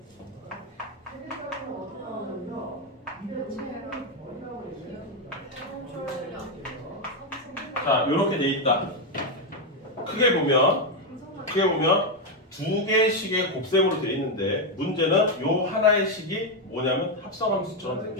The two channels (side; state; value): both; normal; correlation 0.05